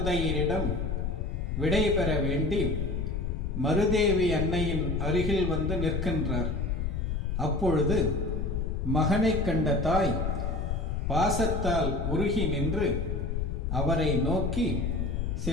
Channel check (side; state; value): left; noise; rumble, 1 dB below the sound